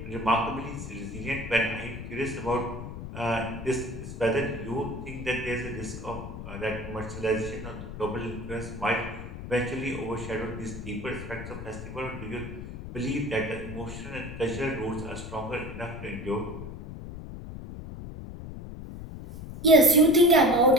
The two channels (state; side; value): noise; left; rumble, 10 dB below the sound